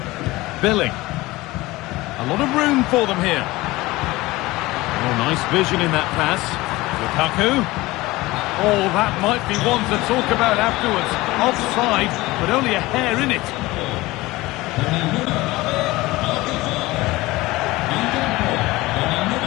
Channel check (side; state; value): right; quieter; 19.9 dB